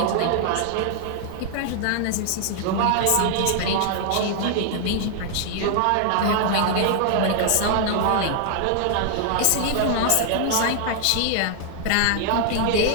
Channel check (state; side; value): different; both; correlation 0.00